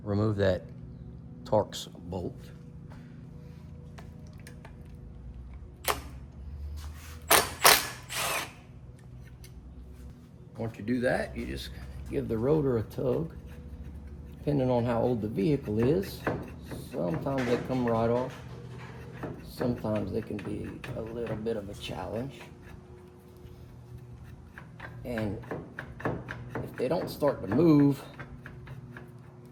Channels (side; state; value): both; identical; correlation 1.00